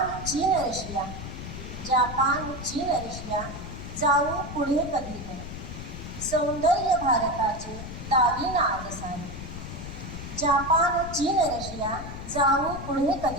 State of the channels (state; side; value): noise; left; rumble, 9 dB below the sound